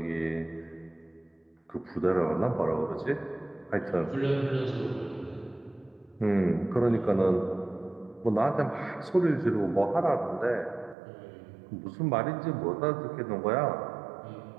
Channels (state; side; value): drops out; left; at 11.0 s